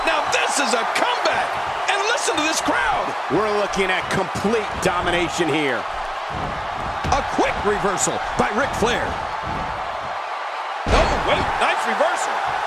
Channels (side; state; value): both; identical; correlation 1.00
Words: Now this is a comeback! And listen to this crowd! We're looking at complete domination here. A quick reversal by Ric Flair. Oh, wait, nice reversal.